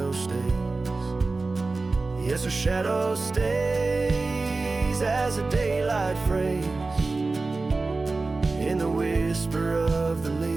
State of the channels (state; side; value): quieter; left; 3.6 dB